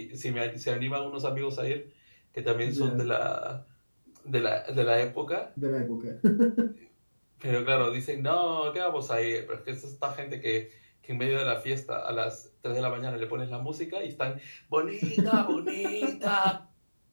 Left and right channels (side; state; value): both; inverted; correlation -1.00